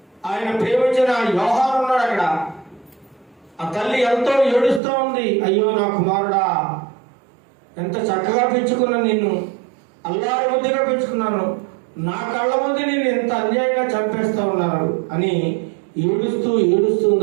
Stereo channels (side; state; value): left; drops out; at 4.8 s